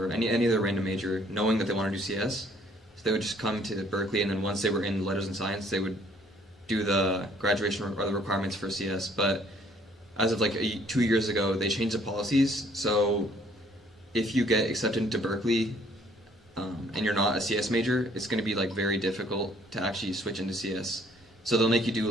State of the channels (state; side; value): normal; both; correlation 0.61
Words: any other random major, knowing that they want to do CS. So they would just come to Berkeley, and then once they were in letters and science, they would do the graduation or the requirements for CS. But as of like 2 years ago, they changed the policies, so if you get accepted into Berkeley, and you're not a CS major, it's going to be like very difficult to actually switch into CS. So they'll make you